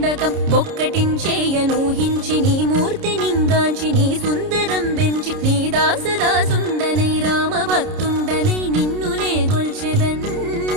బొక్కటించేయనూహించి నీ మూర్తి నింగాంచి నీ సుందరం పెంచి నీ దాసదాసుండనై రామ భక్తుండనై నిన్నునే గొల్చెదన్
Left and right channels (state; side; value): late; left; 30 ms